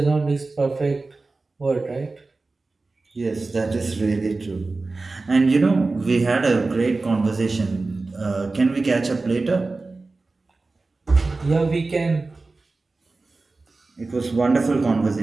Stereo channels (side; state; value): left; quieter; 3.6 dB